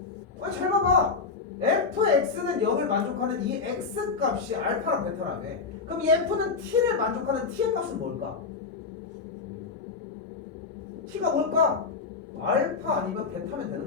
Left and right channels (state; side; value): quieter; right; 4.8 dB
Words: 아니 잘 봐봐. fx는 0을 만족하는 이 x 값이 알파랑 베타라며. 그럼 이 f는 t를 만족하는 t의 값은 뭘까? t가 뭘까? 알파 아니면 베타면 되는